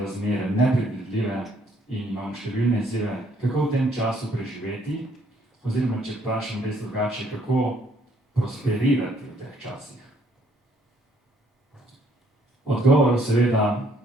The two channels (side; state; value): both; normal; correlation 0.66